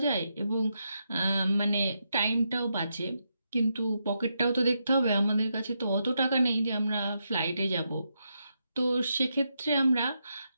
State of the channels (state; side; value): inverted; both; correlation -0.83